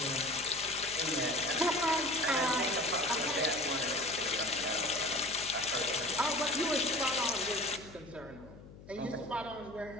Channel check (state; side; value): noise; left; hum, 18 dB below the sound